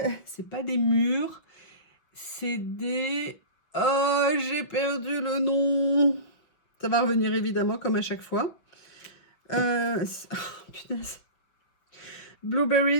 des mûres. C'est des... Oh, j'ai perdu le nom. Ça va revenir évidemment, comme à chaque fois. Oh, punaise.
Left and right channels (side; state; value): right; late; 6.3 ms